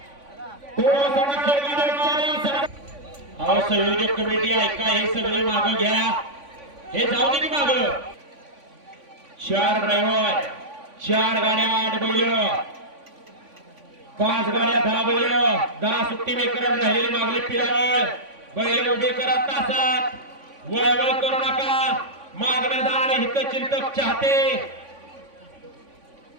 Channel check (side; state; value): left; late; 3.5 ms